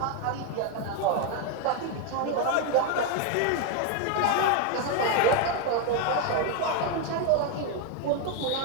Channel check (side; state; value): both; different; correlation 0.01